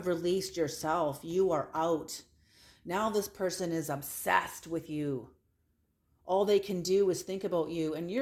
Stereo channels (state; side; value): identical; both; correlation 1.00